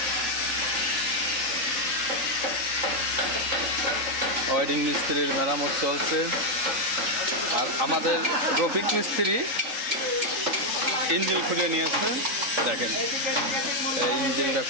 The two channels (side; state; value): left; late; 3.7 ms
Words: ওয়ারিং মিস্ত্রির মেরামত চলছে। আর আমাদের রফিক মিস্ত্রি ইঞ্জিন খুলে নিয়েছে, দেখেন এই ইঞ্জিনটা